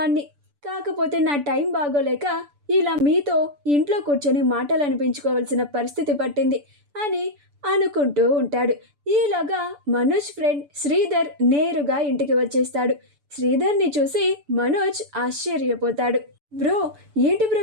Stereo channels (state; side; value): late; left; 6.9 ms